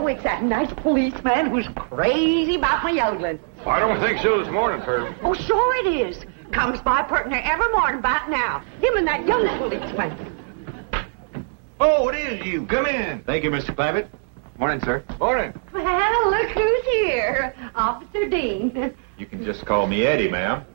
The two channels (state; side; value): silent; left; digital silence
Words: it's that nice policeman who's crazy about my yodeling. I don't think so this morning, Pearl. Oh, sure it is. Comes by pert near every morning about now. Him and that young policeman. Oh, it is you. Come in. Thank you, Mr. Clampett. Morning, sir. Morning. Well, look who's here. Officer Dean. You can just call me Eddie, ma'am.